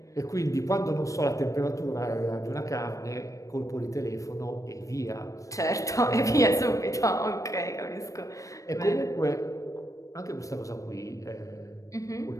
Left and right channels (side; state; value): right; late; 0.16 ms